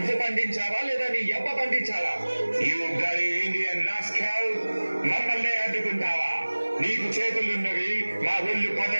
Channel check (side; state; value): both; inverted; correlation -1.00